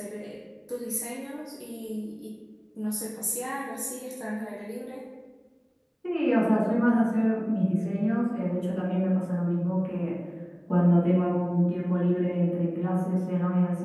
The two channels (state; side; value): identical; both; correlation 1.00